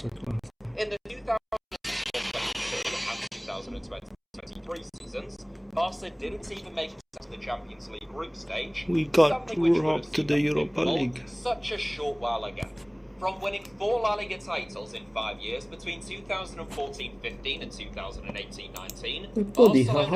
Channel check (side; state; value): both; identical; correlation 1.00